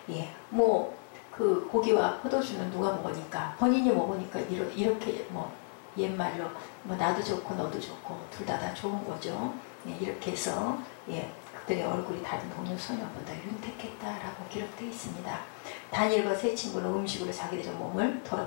예, 그 고기와 포도주는 누가 먹으니까 본인이 먹으니까 이렇게 옛말로 나도 좋고 너도 좋고 둘 다 좋은 거죠. 예, 이렇게 해서 예, 그들의 얼굴이 다른 동료 소녀보다 윤택했다라고 기록되어 있습니다. 다니엘과 세 친구는 음식으로 자기들의 몸을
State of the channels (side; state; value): right; silent; 56 dB below the other